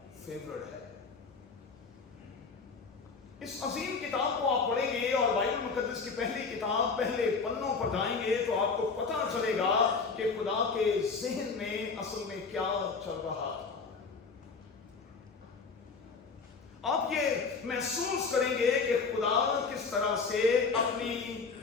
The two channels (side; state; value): right; quieter; 4.8 dB